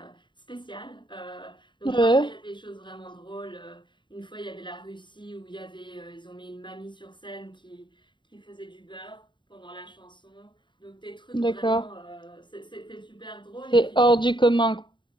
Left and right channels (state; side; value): late; right; 0.23 ms